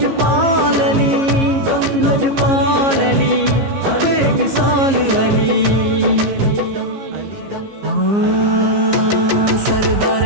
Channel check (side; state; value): left; late; 15 ms